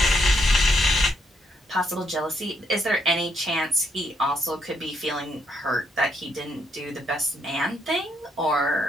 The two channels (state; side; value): normal; both; correlation 0.74